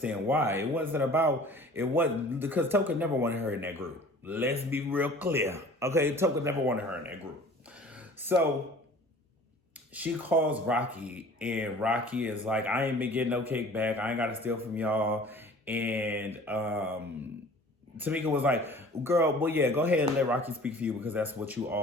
why. It wasn't because Toka never wanted her in that group. Let's be real clear. Okay, Toka never wanted her in that group. So she calls Rocky, and Rocky is like, I ain't been getting no kickback. I ain't got to steal from y'all. And Tamika was like, girl, well, yeah, go ahead and let Rocky speak for you because that's what you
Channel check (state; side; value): normal; both; correlation 0.47